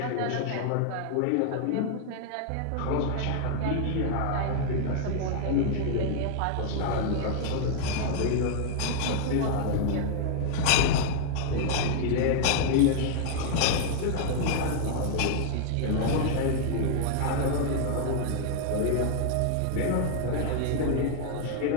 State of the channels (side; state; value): both; different; correlation 0.00